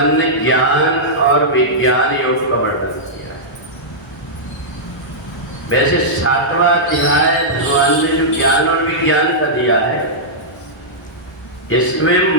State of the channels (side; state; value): both; normal; correlation -0.11